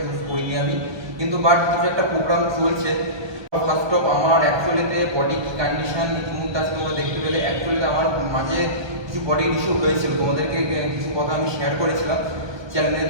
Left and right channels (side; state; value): left; late; 1.2 ms